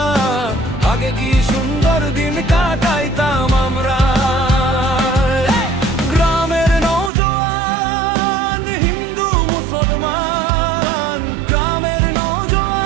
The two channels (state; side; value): drops out; left; at 7.1 s